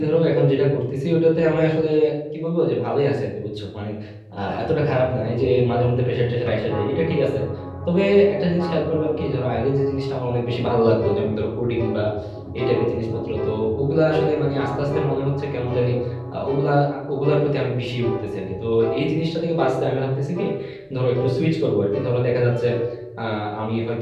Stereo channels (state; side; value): identical; both; correlation 1.00